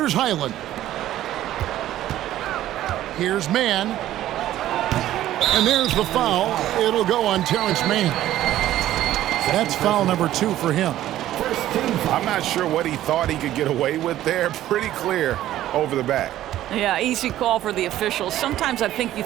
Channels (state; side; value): quieter; left; 13.4 dB